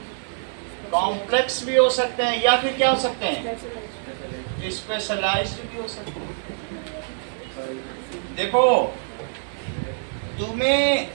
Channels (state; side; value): silent; left; 62 dB below the other